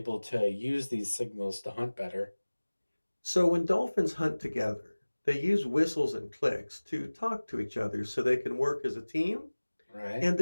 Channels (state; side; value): inverted; both; correlation -1.00